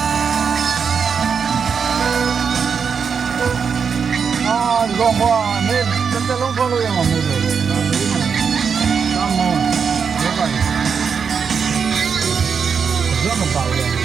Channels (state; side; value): quieter; left; 6.3 dB